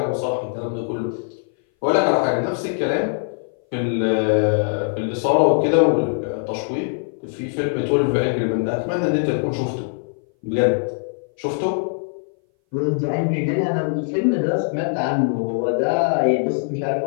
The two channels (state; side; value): silent; right; 59 dB below the other